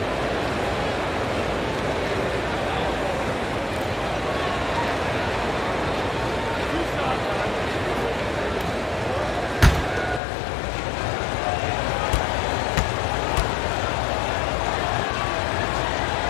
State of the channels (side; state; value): right; drops out; at 10.2 s